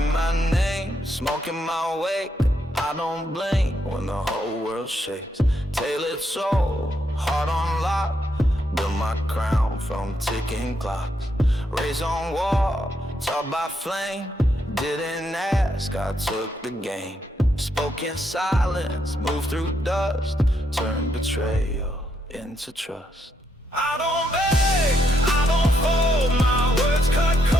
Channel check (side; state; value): both; normal; correlation 0.77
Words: my name, smoking my wake. I don't blink when the whole world shakes. Tailored soul, heart on lock. Build my crown from ticking clocks. Raised on wall, taught by flame. Didn't ask, I took the game. Spoke in silence, moved through dust. Turned betrayal into trust. I don't beg, I don't fold. My words cut